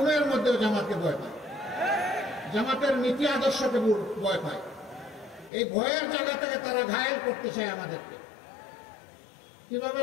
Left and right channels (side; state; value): right; drops out; at 5.5 s